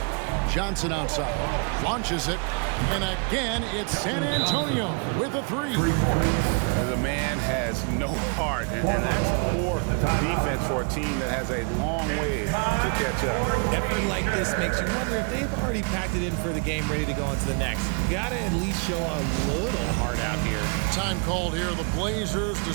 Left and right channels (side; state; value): left; quieter; 36.1 dB